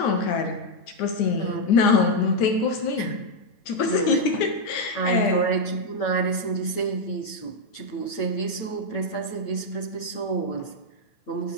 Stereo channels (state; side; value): late; right; 8.8 ms